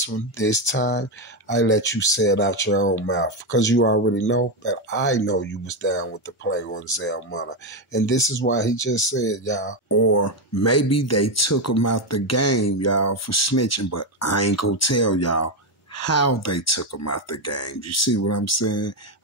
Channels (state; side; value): normal; both; correlation 0.08